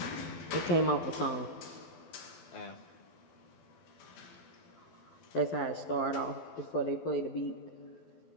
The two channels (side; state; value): right; late; 12 ms